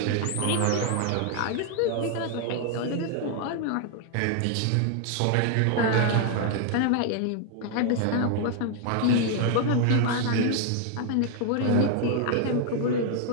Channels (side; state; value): both; different; correlation 0.00